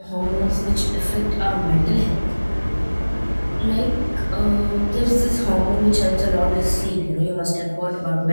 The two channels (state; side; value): inverted; both; correlation -1.00